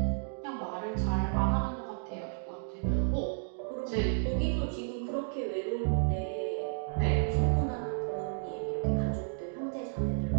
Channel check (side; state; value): left; silent; digital silence